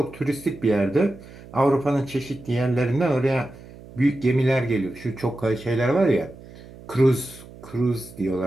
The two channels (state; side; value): noise; right; hum, 19 dB below the sound